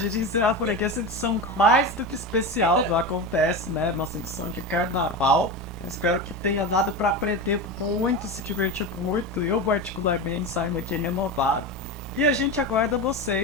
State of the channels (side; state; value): both; normal; correlation 0.22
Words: encerra por aqui essa edição mais do que especial do Acontece, né? Nossa edição de carnaval. Eu espero que tenha dado para aprender muito, se divertir muito. Eu, particularmente, saio muito renovado. E a gente aguarda